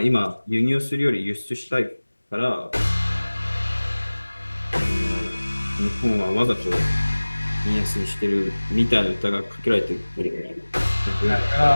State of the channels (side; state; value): both; inverted; correlation -1.00